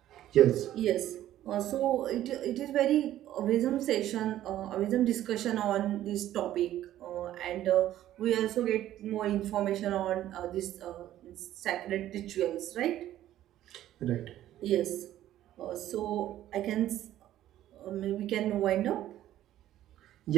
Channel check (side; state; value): left; quieter; 13.0 dB